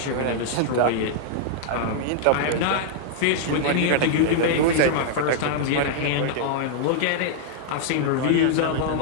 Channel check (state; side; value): different; both; correlation -0.01